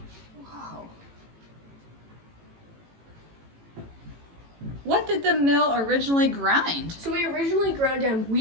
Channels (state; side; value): late; left; 18 ms